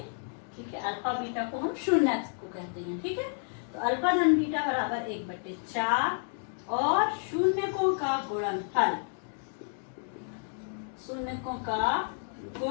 ठीक है। अल्फा बीटा को हम शून्य को कहते हैं, ठीक है। तो अल्फा धन बीटा बराबर 1/4, और शून्यकों का गुणनफल, शून्यकों का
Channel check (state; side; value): silent; right; 56 dB below the other